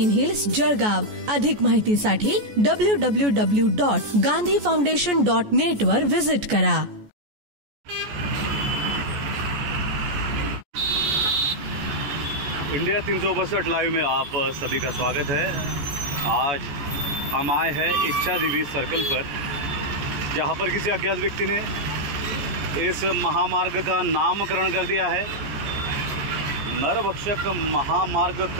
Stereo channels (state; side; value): late; left; 14 ms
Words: हिल्स, जळगाव. अधिक माहितीसाठी www.gandhifoundation.net वर विजिट करा. इंडिया 362 लाइव में आप सभी का स्वागत है. आज हम आए हैं इच्छा देवी सर्कल पर, जहाँ पर किसी अज्ञात व्यक्ति ने इस महामार्ग का नामकरण कर दिया है. नरभक्षक महामार्ग